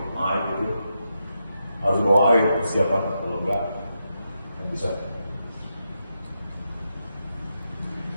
air itu harus bawa air persiapan, kalau enggak yang bisa.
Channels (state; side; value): inverted; both; correlation -0.85